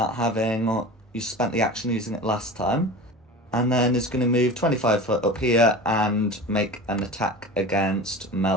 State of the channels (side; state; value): both; normal; correlation 0.33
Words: you spent the action using it last time, and then is gonna move 25 foot up here and make an attack against